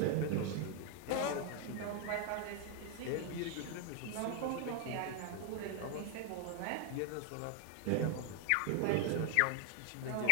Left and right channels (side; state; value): both; different; correlation 0.00